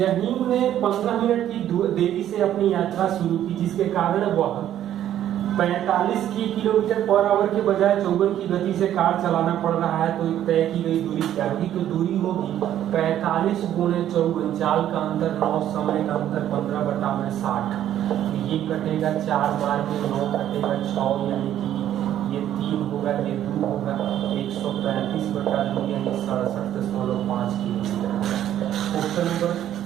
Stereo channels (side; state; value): left; quieter; 11.4 dB